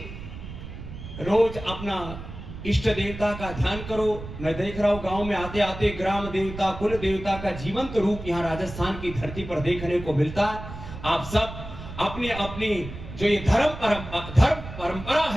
रोज अपना इष्ट देवता का ध्यान करो। मैं देख रहा हूं गांव में आते आते ग्राम देवता, कुल देवता का जीवंत रूप यहाँ राजस्थान की धरती पर देखने को मिलता है। आप सब अपनी अपनी जो ये धर्म परंपरा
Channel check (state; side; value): noise; right; rumble, 11 dB below the sound